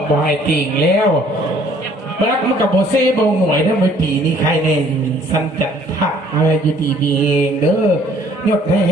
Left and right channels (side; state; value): both; normal; correlation 0.59